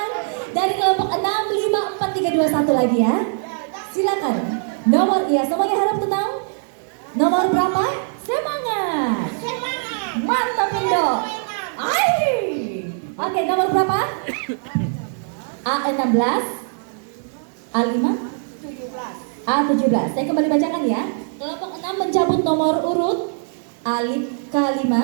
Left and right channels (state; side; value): silent; left; digital silence